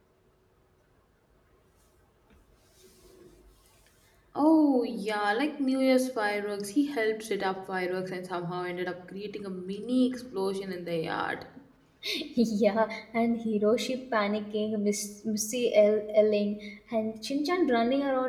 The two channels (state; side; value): identical; both; correlation 1.00